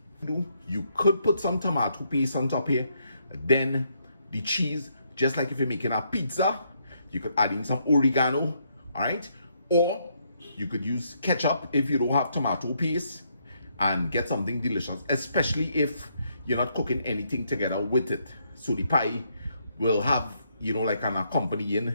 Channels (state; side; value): inverted; both; correlation -0.74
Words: You could put some tomato paste on top here, then the cheese, just like if you're making a pizza, you could add in some oregano, all right? Or you could use ketchup if you don't have tomato paste and get something delicious, especially if you're not cooking anything together with it. So the pie will have, you know, like an